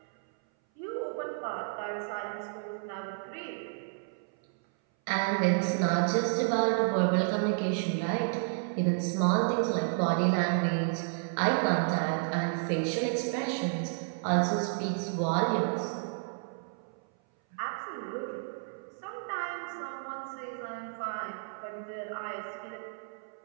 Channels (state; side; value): silent; left; 57 dB below the other